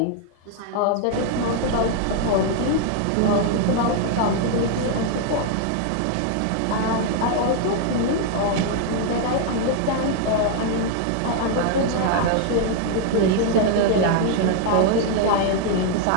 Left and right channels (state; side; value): different; both; correlation 0.00